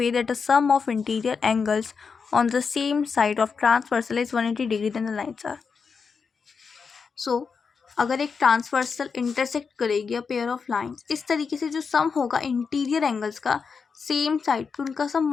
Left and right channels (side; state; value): right; quieter; 5.5 dB